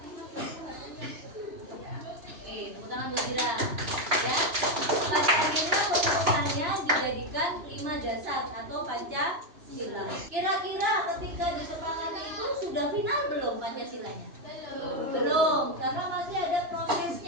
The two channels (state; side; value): late; left; 2.9 ms